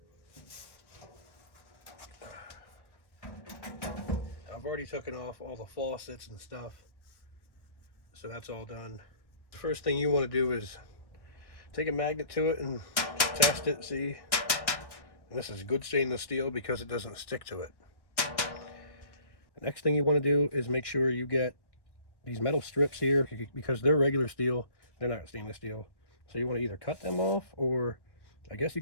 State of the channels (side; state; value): right; late; 1.1 ms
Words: I've already taken off all the faucets and stuff, so that's all done. The first thing you want to do is take a magnet to it and test it, see. And this is good stainless steel because it doesn't stick to it. The next thing you want to do is make sure you get these metal strips here, because they're regular steel, they're not stainless steel. So you want to either cut them off, or I guess you